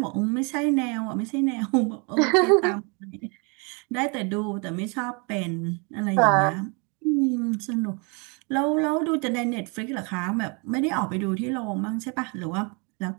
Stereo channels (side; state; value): left; quieter; 33.1 dB